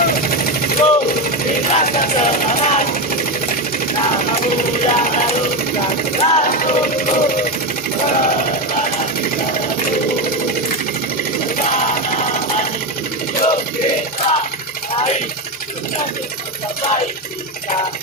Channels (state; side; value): normal; both; correlation 0.13